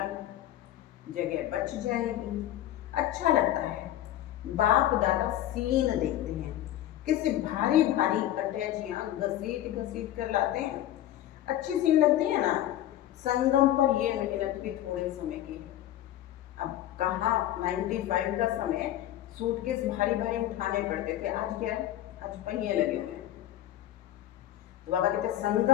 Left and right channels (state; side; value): quieter; right; 13.1 dB